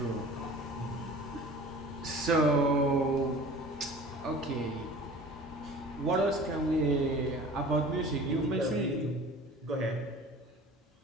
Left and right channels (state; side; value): normal; both; correlation 0.43